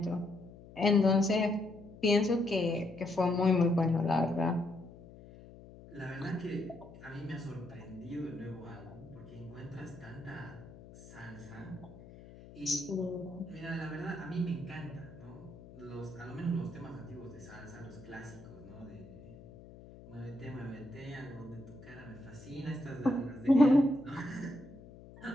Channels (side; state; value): left; noise; hum, 18 dB below the sound